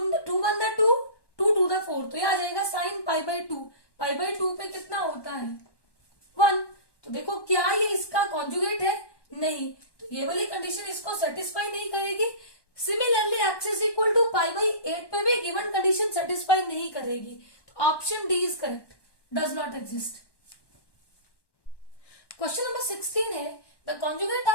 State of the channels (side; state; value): right; late; 1.1 ms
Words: 2 2 2 4, तो ये आ जाएगा sign pi by 2, pi by 2 पे कितना होता है 1। तो देखो क्या ये इसका कॉन्जुगेट है, नहीं, तो ये वाली कंडीशन इसको सेटिस्फाई नहीं करेगी। Similarly x is equal to pi by 8 पे भी गिवन कंडीशन सेटिस्फाई नहीं करेगी, तो option D is correct, does not exist. Question number 16 है, the conjugate